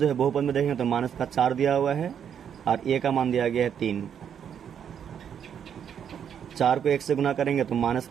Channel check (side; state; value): left; quieter; 8.4 dB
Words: है बहुपद में देखेंगे तो माइनस का 4 दिया हुआ है, और ए का मान दिया गया है 3। 4 को 1 से गुना करेंगे तो माइनस